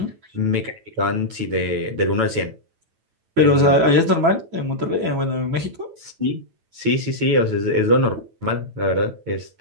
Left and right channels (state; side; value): late; left; 9.1 ms